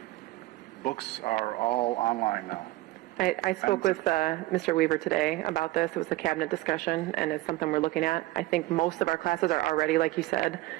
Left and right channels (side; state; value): left; quieter; 18.5 dB